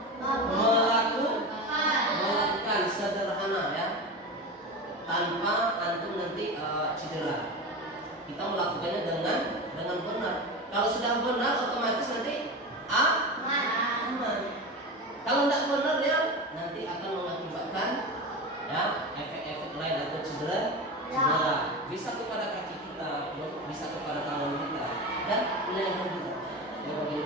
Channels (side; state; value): both; normal; correlation 0.25